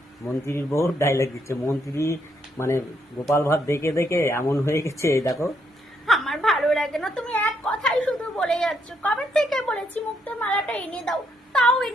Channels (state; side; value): normal; both; correlation 0.75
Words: মন্ত্রীর বউ ডায়লগ দিচ্ছে। মন্ত্রী মানে গোপাল ভাঁড় দেখে দেখে এমন হয়ে গেছে, এই দেখো। আমার ভালো লাগে না, তুমি এক কথাই শুধু বলে যাচ্ছ। কবে থেকে বলেছি মুক্তোর মালাটা এনে দাও, তাও